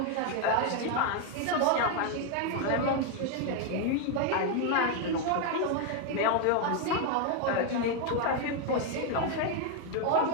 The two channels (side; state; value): both; different; correlation 0.01